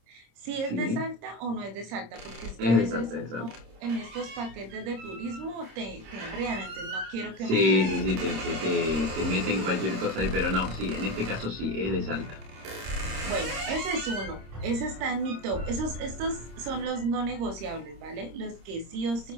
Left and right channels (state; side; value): late; left; 26 ms